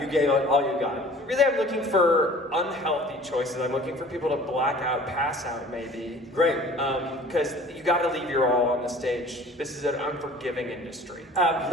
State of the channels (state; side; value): normal; both; correlation 0.47